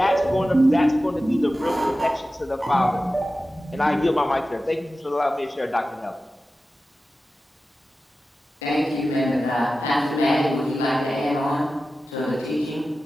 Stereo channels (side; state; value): both; normal; correlation 0.94